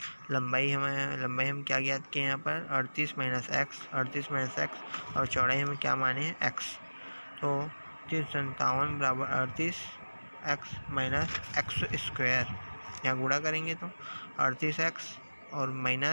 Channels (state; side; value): inverted; both; correlation -1.00